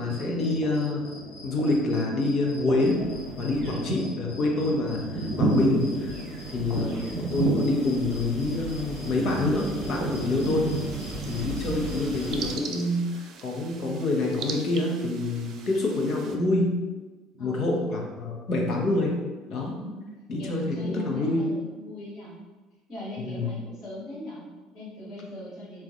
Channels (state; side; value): normal; both; correlation 0.55